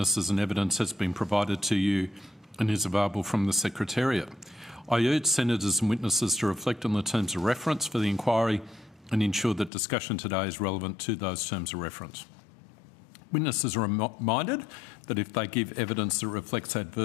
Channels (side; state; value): right; drops out; at 9.7 s